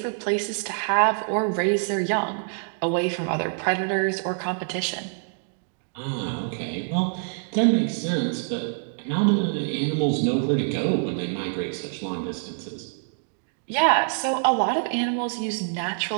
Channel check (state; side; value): silent; left; digital silence